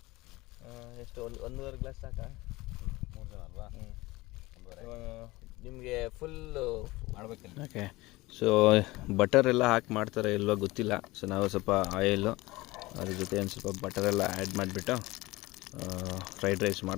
ಎಷ್ಟು 1.5 ಗ್ಲಾಸ್ ಸಾಕಾ? 3 ಜನ ಅಲ್ವಾ? ನಿಮಗೆ ಫುಲ್ ಮಾಡಬೇಕಿಲ್ಲ. ಓಕೆ, ಸೊ ಬಟರ್ ಎಲ್ಲ ಹಾಕಿ ಮಾಡ್ತಾರೆ ಇಲ್ವೋ ಗೊತ್ತಿಲ್ಲ. ಸೊ ನಾವು ಸ್ವಲ್ಪ ಆಯಿಲು ಅದ್ರ ಜೊತೆ ಒಂದು ಸ್ವಲ್ಪ ಬಟರೆಲ್ಲ ಆ್ಯಡ್ ಮಾಡಿಬಿಟ್ಟು ಫ್ರೈಡ್ ರೈಸ್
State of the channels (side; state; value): right; quieter; 20.5 dB